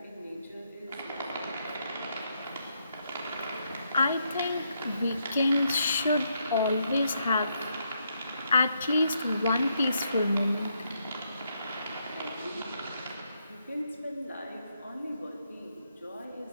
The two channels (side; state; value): both; inverted; correlation -0.78